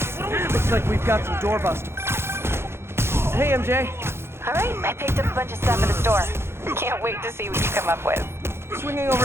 Looks like we've got some doorbusters. Hey, MJ. All right, I picked up a bunch of stuff at the store. Can't wait to see what you come up with. Swinging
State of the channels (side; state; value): left; late; 0.12 ms